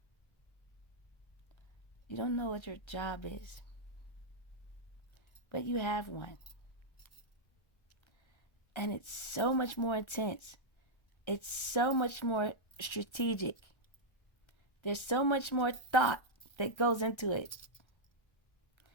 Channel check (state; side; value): late; right; 1.3 ms